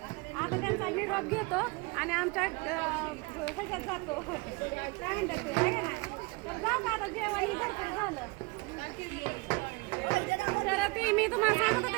त्यांचा निरोप घेतो आणि आमच्या ह्याच्यात जातो काय म्हणतात ते आहे का नाही. तर जाऊ का आता जेवण भरपूर झालं. तर ती मी तुम्हाला सांगत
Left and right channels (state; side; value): quieter; left; 27.0 dB